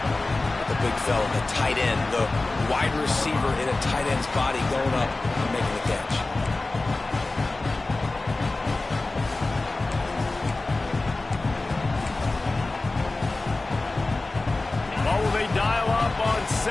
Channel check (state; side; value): quieter; right; 3.2 dB